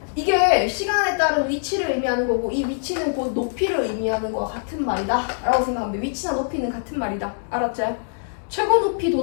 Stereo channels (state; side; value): silent; right; digital silence